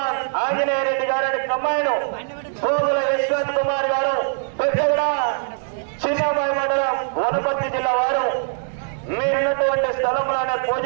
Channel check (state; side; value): silent; left; 61 dB below the other